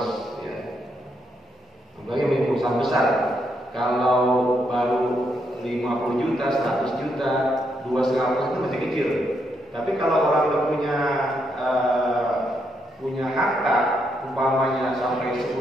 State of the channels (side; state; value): both; normal; correlation 0.78